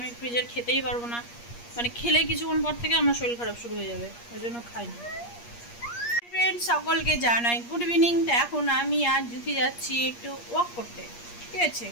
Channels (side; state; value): right; late; 8.5 ms